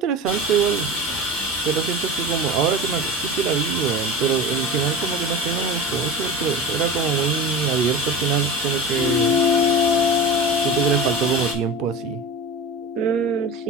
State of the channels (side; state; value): both; normal; correlation 0.31